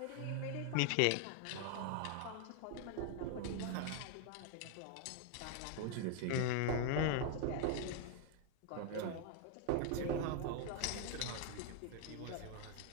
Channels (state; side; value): different; both; correlation 0.00